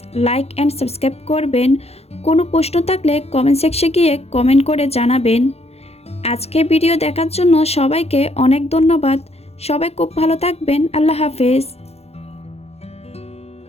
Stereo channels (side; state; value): right; late; 0.30 ms